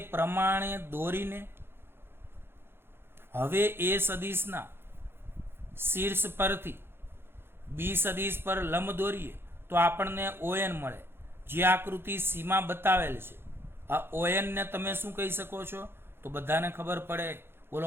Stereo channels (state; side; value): late; left; 0.11 ms